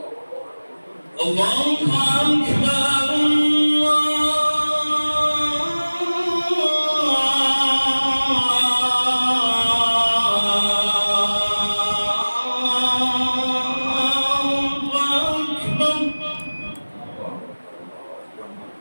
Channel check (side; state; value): both; inverted; correlation -1.00